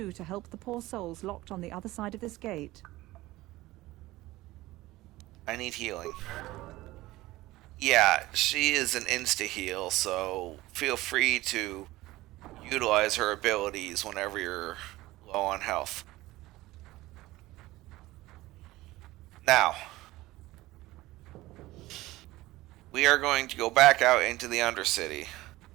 to help the poor souls locked on the other side of this gate. I need healing. Yeah, she is an insta-heal, so feel free to utilize her abilities whenever you're low on health. Now, we are going to go back out into the Undercity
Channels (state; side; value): quieter; left; 18.1 dB